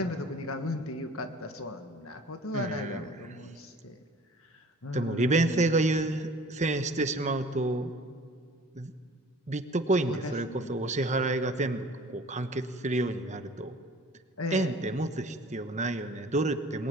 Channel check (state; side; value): normal; both; correlation 0.48